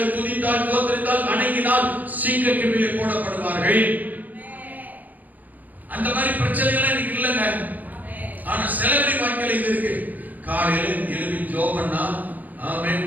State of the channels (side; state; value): left; late; 0.082 ms